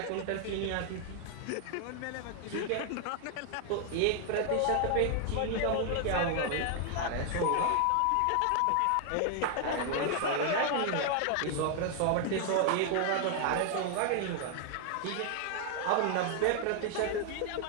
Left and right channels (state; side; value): different; both; correlation 0.00